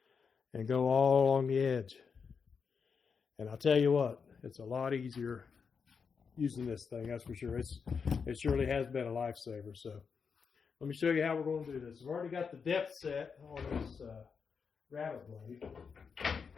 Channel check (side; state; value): right; quieter; 5.9 dB